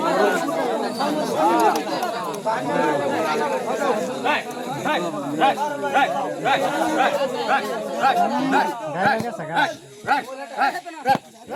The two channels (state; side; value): identical; both; correlation 1.00